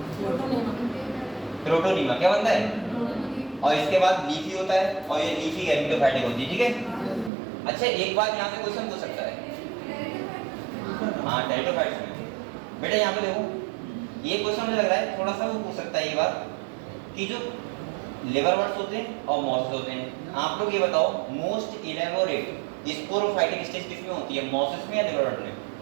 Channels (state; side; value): drops out; left; at 7.3 s